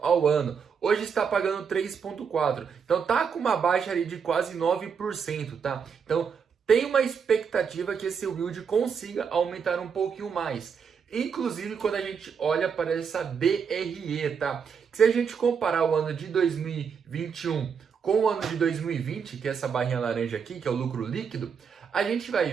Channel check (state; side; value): quieter; left; 6.5 dB